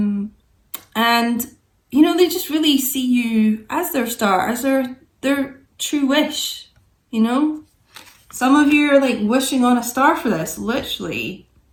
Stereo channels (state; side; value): identical; both; correlation 1.00